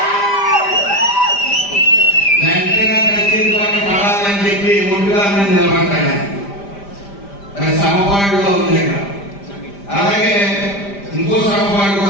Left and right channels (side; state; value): right; late; 5.0 ms